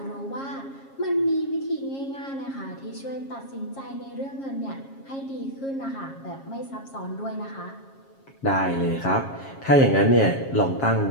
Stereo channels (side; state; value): right; late; 7.4 ms